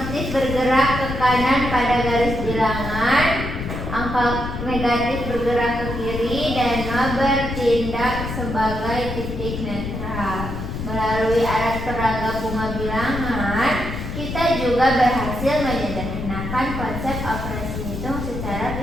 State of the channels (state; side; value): noise; left; rumble, 6 dB below the sound